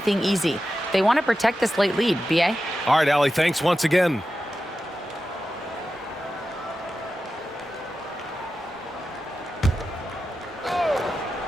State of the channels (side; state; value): both; normal; correlation 0.92